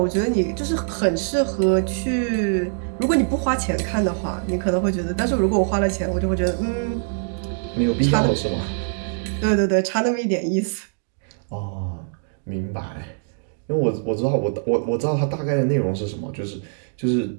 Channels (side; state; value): left; silent; digital silence